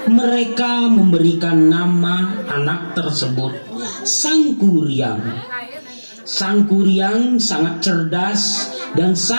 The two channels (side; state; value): both; inverted; correlation -1.00